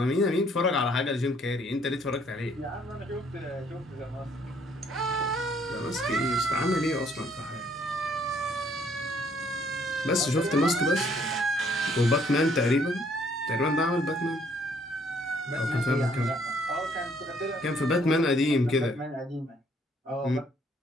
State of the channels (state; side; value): normal; both; correlation 0.65